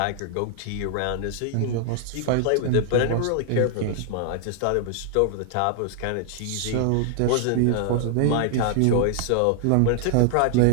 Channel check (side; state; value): both; different; correlation 0.00